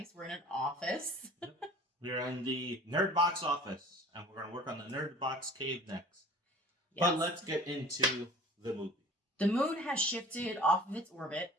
We're in an office. Yep. We're in the Nerdbox office, and we're going to work on the Nerdbox cave next. Yes. But let's get into the movie. The moon has shifted off of its orbit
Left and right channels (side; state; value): both; normal; correlation 0.45